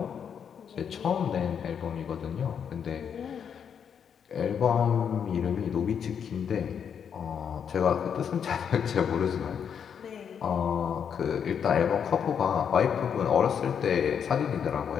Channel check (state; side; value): quieter; right; 7.6 dB